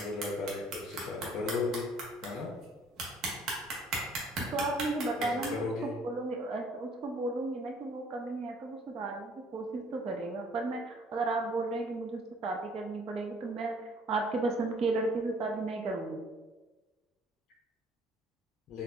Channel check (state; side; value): normal; both; correlation 0.58